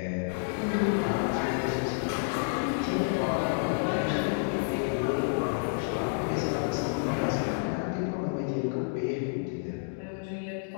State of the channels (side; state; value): right; silent; digital silence